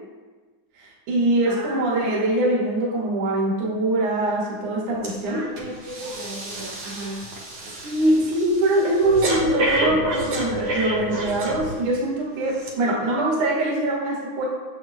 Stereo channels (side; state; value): left; late; 9.7 ms